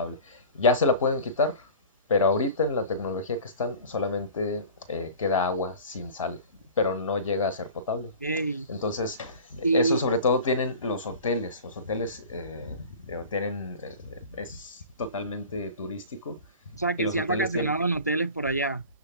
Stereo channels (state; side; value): inverted; both; correlation -0.39